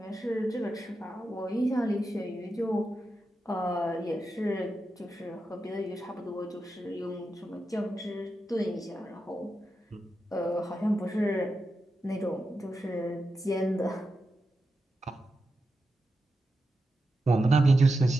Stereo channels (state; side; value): normal; both; correlation 0.89